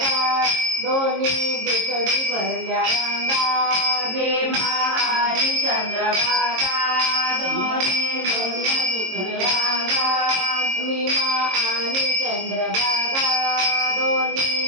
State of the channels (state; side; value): late; left; 22 ms